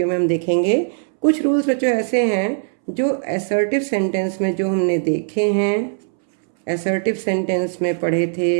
में हम देखेंगे। कुछ रूल्स बच्चों ऐसे हैं जो असर्टिव सेंटेंस में जो हमने देखे हैं, असर्टिव सेंटेंस में पढ़े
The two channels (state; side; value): silent; left; 66 dB below the other